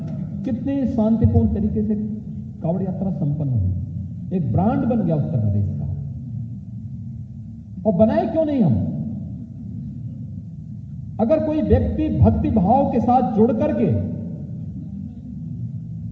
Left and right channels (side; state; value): both; identical; correlation 1.00